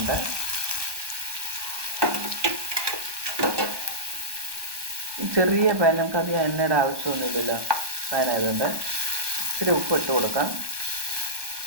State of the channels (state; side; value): late; left; 1.2 ms